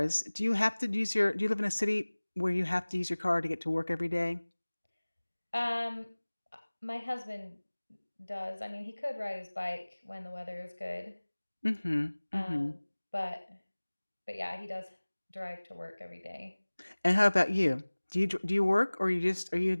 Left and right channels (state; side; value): inverted; both; correlation -1.00